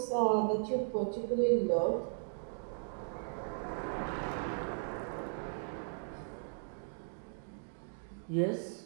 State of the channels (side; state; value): left; silent; digital silence